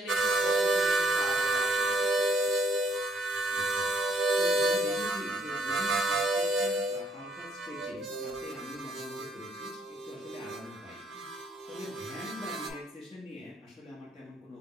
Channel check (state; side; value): normal; both; correlation 0.67